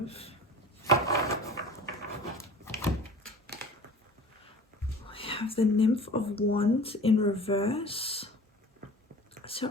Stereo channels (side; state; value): both; normal; correlation 0.42